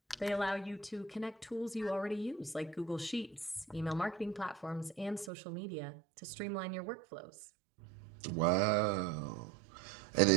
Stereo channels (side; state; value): left; drops out; at 5.3 s